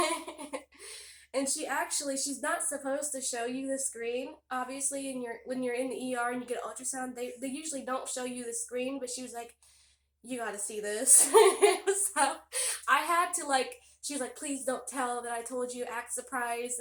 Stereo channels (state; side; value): identical; both; correlation 1.00